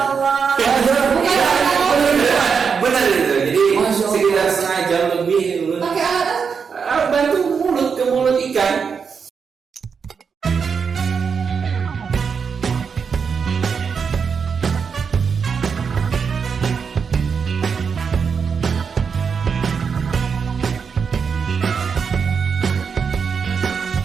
Benar itu. Jadi sekitar setengah jam lebih Pakai alat bantu mulut ke mulut ikan.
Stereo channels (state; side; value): quieter; left; 6.1 dB